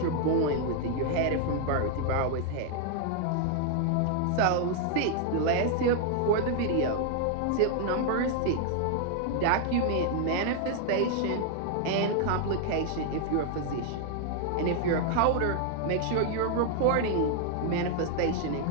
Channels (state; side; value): different; both; correlation 0.00